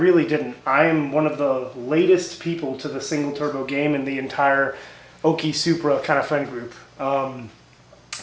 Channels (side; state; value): both; identical; correlation 1.00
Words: didn't. I am one of the latest people to the single turbo game in the entire Okie Supra kind of friend group.